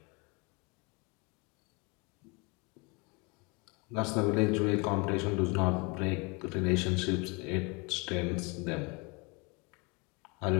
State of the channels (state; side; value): quieter; right; 29.4 dB